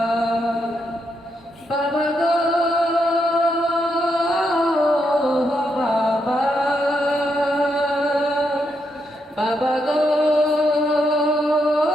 বাবা গো বাবা, বাবা গো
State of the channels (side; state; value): both; normal; correlation 0.80